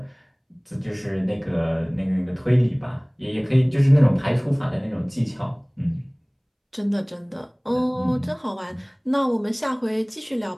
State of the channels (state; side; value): identical; both; correlation 1.00